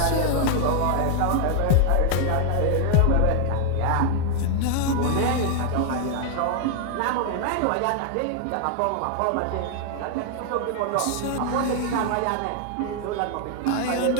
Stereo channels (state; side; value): different; both; correlation 0.00